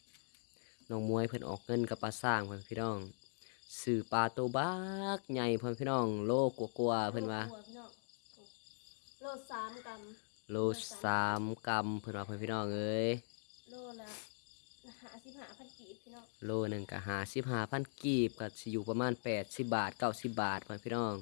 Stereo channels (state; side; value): silent; right; digital silence